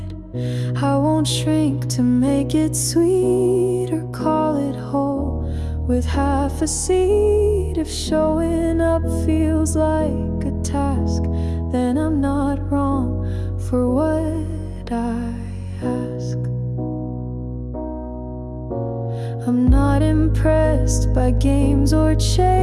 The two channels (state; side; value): identical; both; correlation 1.00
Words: I won't shrink to make it sweet or call it whole with half a seed. If showing up feels like a task, then I'm not wrong for what I ask. I'm not impressed by games or